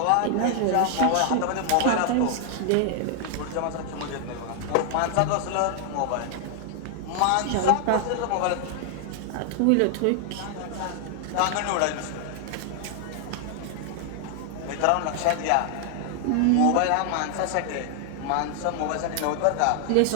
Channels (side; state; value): both; different; correlation 0.00